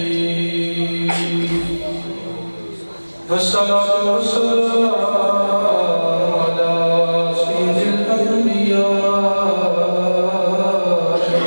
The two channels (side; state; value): both; inverted; correlation -1.00